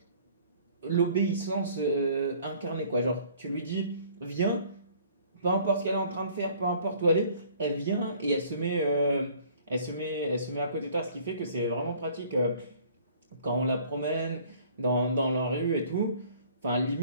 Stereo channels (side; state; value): both; inverted; correlation -0.55